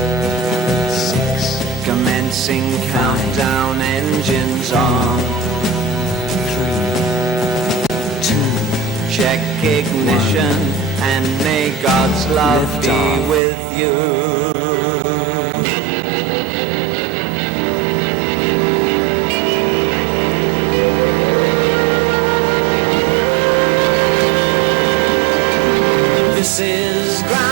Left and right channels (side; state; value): left; drops out; at 13.4 s